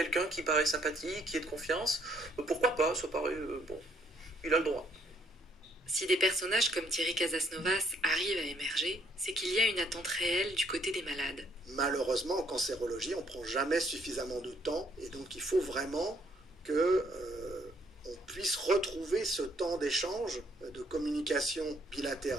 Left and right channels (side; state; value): both; normal; correlation 0.68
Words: qui paraît sympathique, qui est de confiance, pourquoi pas, ça paraît, il a le droit. Si des personnages comme Thierry Casasnovas arrivent à émerger, c'est qu'il y a une attente réelle du côté des malades. Malheureusement, en cancérologie, on ne prend jamais suffisamment de temps, et donc il faut vraiment que on puisse retrouver ce temps d'échange, de communication